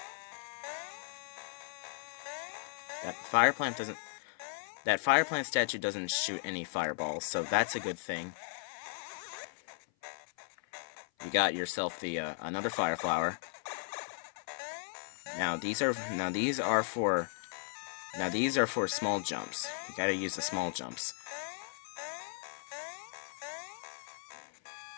That fire plant statue doesn't shoot any fireballs, so that's a good thing. You got yourself the another fire flower. Now these are for small jumps. You gotta use the small jumps.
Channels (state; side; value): silent; right; 54 dB below the other